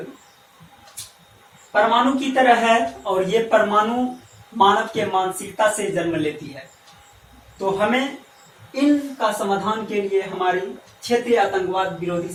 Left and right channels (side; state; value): both; identical; correlation 1.00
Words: परमाणु की तरह है और ये परमाणु मानव के मानसिकता से जन्म लेती है। तो हमें इनका समाधान के लिए हमारी क्षेत्रीय आतंकवाद विरोधी